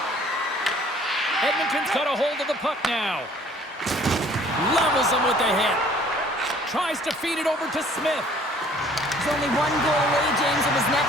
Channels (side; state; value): both; normal; correlation 0.55